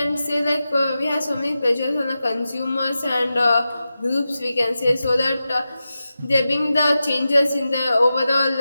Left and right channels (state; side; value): inverted; both; correlation -0.92